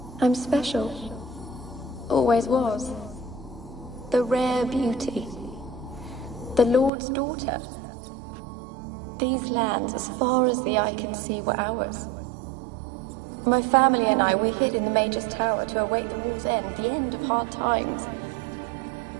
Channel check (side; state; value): left; drops out; at 6.9 s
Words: I'm special. Always was. The rare beauty. The Lord's daughter. These lands, as far as the eye can see, were ours. My family and I, we hid in the Mage's Tower to await the war's end, the end of hard times.